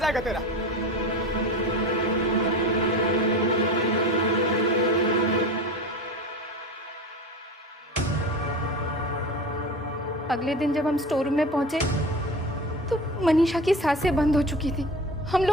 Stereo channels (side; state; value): both; normal; correlation 0.31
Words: तेरा। अगले दिन जब हम स्टोर रूम में पहुंचे तो मनीषा की सांसें बंद हो चुकी थी। हम